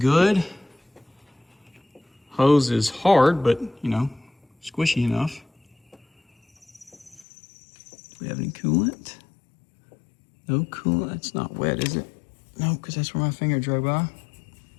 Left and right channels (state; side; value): drops out; right; at 7.2 s